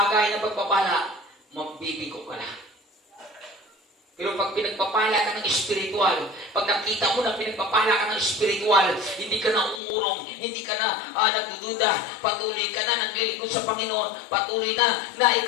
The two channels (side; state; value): right; drops out; at 9.8 s